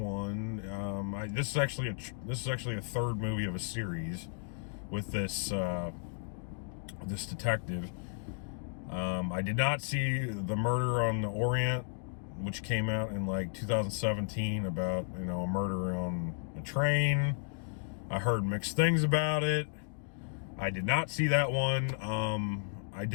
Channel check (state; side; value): silent; right; digital silence